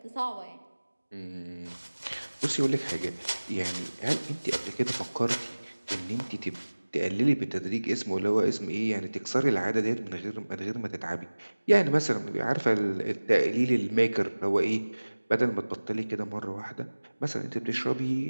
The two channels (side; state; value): both; inverted; correlation -1.00